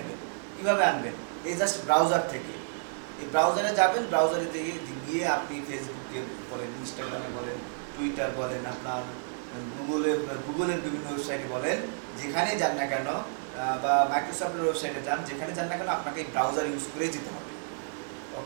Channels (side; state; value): left; silent; digital silence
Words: কীভাবে আনবেন, এই জাস্ট ব্রাউজার থেকে। এই ব্রাউজারে যাবেন, ব্রাউজারে গিয়ে আপনি ফেসবুকে বলেন, ইনস্টাগ্রামে বলেন, টুইটার বলেন, আপনার গুগলের বিভিন্ন ওয়েবসাইটে বলেন, যেখানে যান না কেন, বা মাইক্রোসফটের ওয়েবসাইটে যান, যেখানে যান না কেন আপনাকে এই ব্রাউজার ইউজ করেই যেতে হবে।